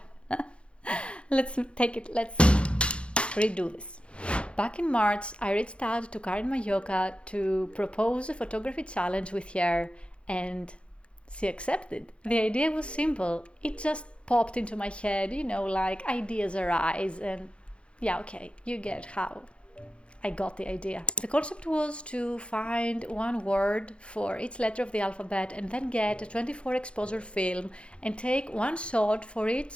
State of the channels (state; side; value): late; right; 0.058 ms